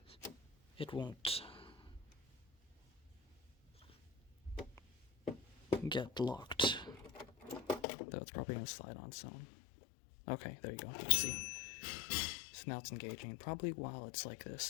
it won't get locked. Though it's probably going to slide on its own. Okay, there you go. You can see. So now it's engaging, and probably while it's like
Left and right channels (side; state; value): right; drops out; at 7.9 s